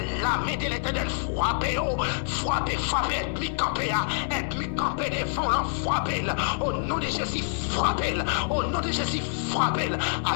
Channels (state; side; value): silent; right; digital silence